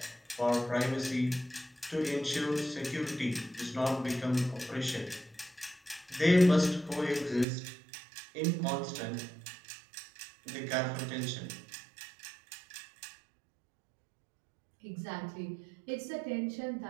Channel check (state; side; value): drops out; left; at 7.5 s